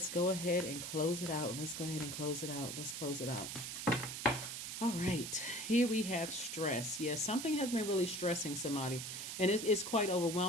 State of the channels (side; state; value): right; noise; hiss, 6 dB below the sound